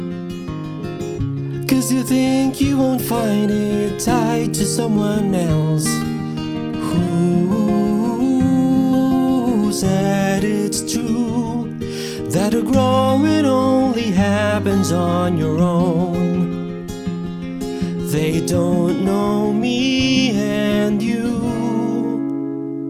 'cause you think you won't find it tied to someone else. Who said it's true that a growing only happens on your own? They don't know me and you.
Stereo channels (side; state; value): both; identical; correlation 1.00